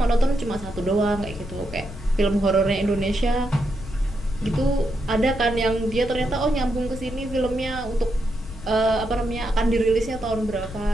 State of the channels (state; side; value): noise; left; rumble, 12 dB below the sound